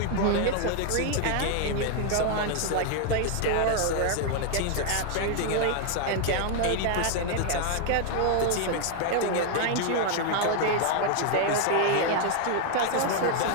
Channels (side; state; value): both; different; correlation 0.00